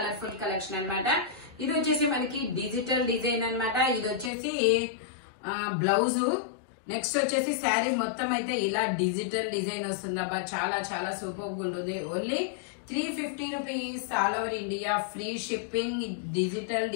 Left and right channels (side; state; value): right; drops out; at 4.3 s